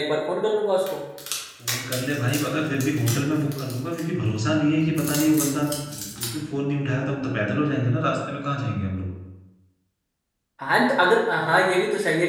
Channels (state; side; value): identical; both; correlation 1.00